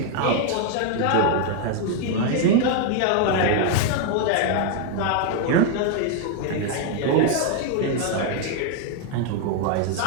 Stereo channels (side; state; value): both; different; correlation 0.01